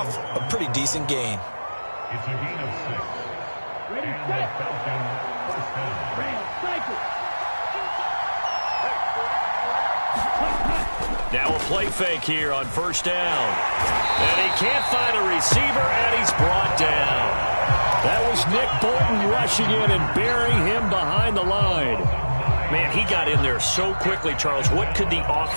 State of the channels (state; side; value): inverted; both; correlation -1.00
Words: a pretty decent gain. It's a gain of 6. Ready, set. First down. Now a play fake here on 1st down. And he can't find a receiver, and he's brought down. That was Nick Bolton rushing in and burying him behind the line. Man, he got in there so quickly, Charles. What could the